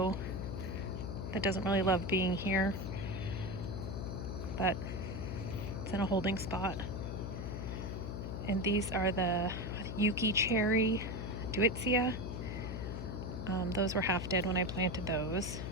that doesn't really love being here, but it's in a holding spot. And these are the Yuki cherry Deutzia. Those were half dead when I planted those.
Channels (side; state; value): left; noise; hum, 5 dB below the sound